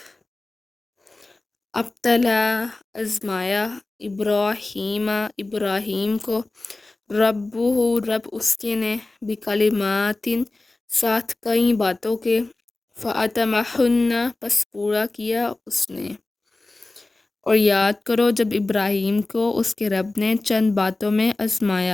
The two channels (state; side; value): quieter; right; 3.1 dB